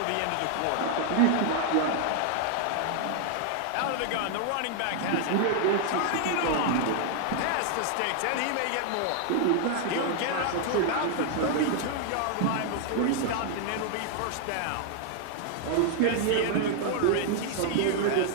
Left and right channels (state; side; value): different; both; correlation 0.00